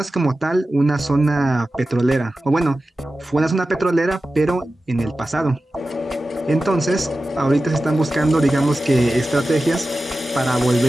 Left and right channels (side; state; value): both; normal; correlation 0.94